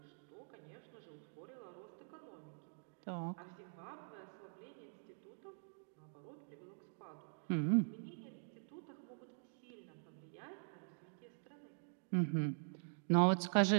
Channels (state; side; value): silent; left; digital silence